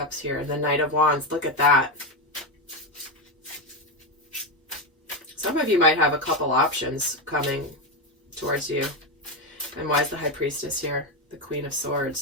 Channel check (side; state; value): both; normal; correlation 0.11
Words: here? And the Knight of Wands. Look at that. Some of you might have a couple options coming towards you. And why is the High Priestess here? The Queen of